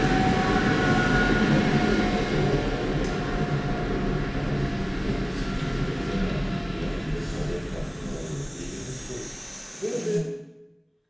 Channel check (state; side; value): identical; both; correlation 1.00